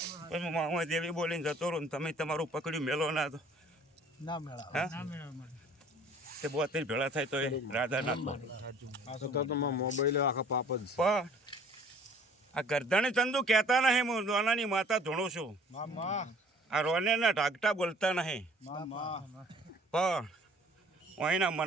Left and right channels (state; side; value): normal; both; correlation 0.53